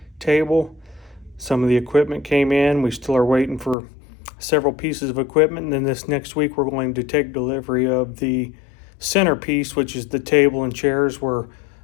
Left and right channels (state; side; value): drops out; right; at 3.8 s